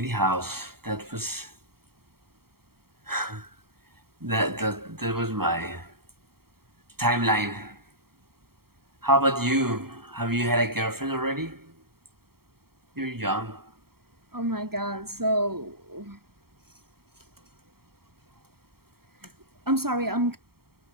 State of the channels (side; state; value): left; late; 0.95 ms